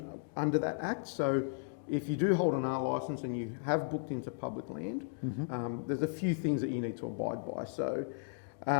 under that act. So if you do hold an R licence and you have booked into public land, there's a few things that you need to abide by. So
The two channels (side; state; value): right; silent; digital silence